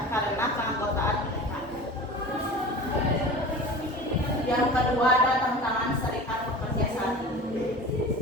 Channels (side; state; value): both; normal; correlation 0.36